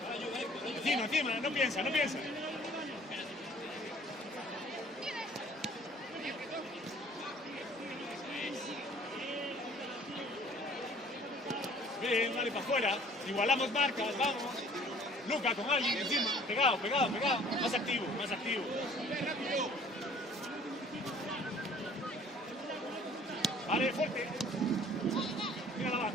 Encima, no piensa. Bien, dale para afuera. Igualamos marcas, vamos. Luca con alguien encima. Pegado. Más activo. Vale, fuerte. Mira la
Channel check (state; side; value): normal; both; correlation 0.53